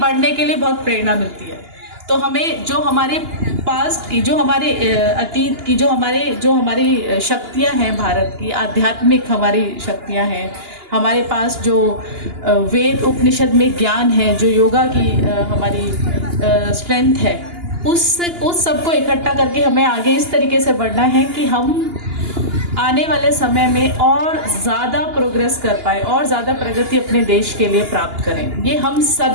के लिए बहुत प्रेरणा मिलती है। तो हमें जो हमारे पास्ट की, जो हमारे अतीत की, जो हमारी शक्तियाँ हैं, भारत की आध्यात्मिक हमारी शक्तियाँ हैं, हमारे पास जो वेद उपनिषद में ज्ञान है, जो योगा की हमारी स्ट्रेंथ है, उस सबको इकट्ठा करके हमें आगे इस तरीके से बढ़ना है कि हम आने वाले समय में और ज़्यादा प्रोग्रेस कर पाए और ज़्यादा प्रगति अपने देश के लिए प्राप्त करें। ये हम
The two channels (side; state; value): left; late; 2.9 ms